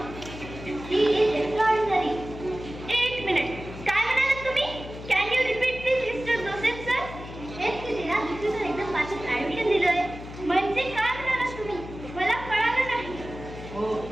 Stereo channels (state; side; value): noise; left; hum, 12 dB below the sound